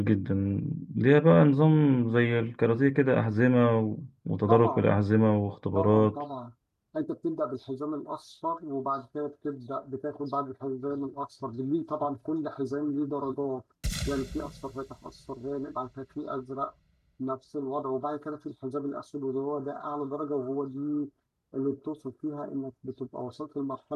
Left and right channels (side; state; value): both; identical; correlation 1.00